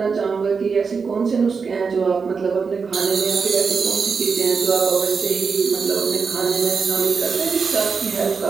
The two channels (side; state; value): left; quieter; 5.3 dB